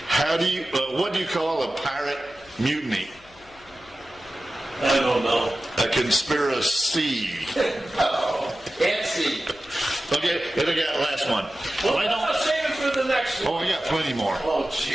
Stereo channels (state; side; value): noise; left; hum, 27 dB below the sound